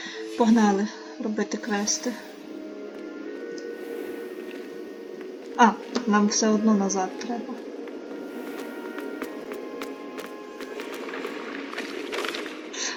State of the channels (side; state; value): both; identical; correlation 1.00